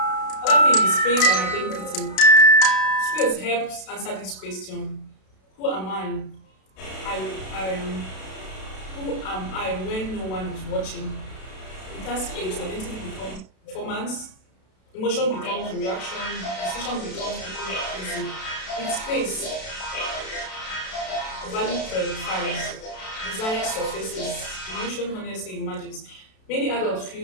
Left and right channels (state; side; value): late; right; 32 ms